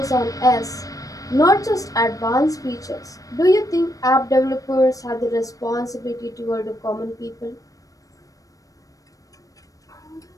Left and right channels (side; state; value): right; late; 0.16 ms